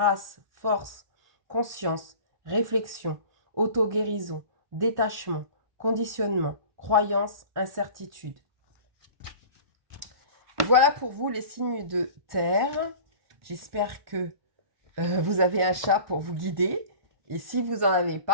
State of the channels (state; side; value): late; left; 1.5 ms